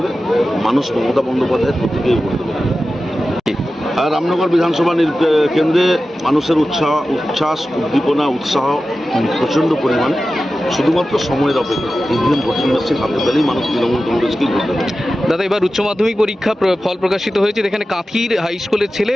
মানুষ মমতা বন্দ্যোপাধ্যায়ের প্রতীকেই ভোট দেবে। আর রামনগর বিধানসভা কেন্দ্রে মানুষের উচ্ছ্বাস, উদ্দীপনা, উৎসাহ প্রচণ্ড পরিমাণে। শুধুমাত্র সময়ের অপেক্ষা। ইভিএম ভোটিং মেশিন হাতে পেলেই মানুষ তৃণমূল কংগ্রেসকেই ভোট দেবে। দাদা, এবার উচ্চ মাধ্যমিক পরীক্ষা ফল প্রকাশিত হয়েছে। যেখানে কাঁথির হাই স্কুলের ছেলে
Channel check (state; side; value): normal; both; correlation 0.94